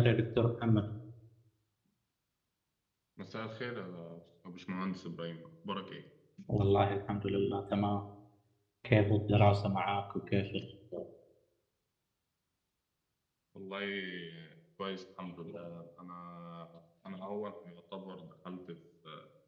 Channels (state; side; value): identical; both; correlation 1.00